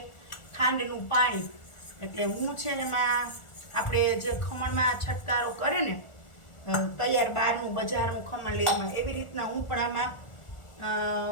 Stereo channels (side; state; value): right; late; 1.4 ms